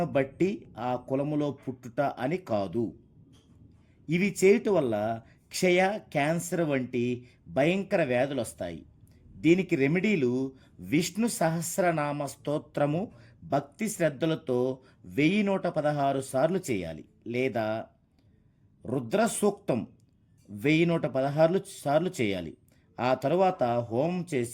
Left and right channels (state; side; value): identical; both; correlation 1.00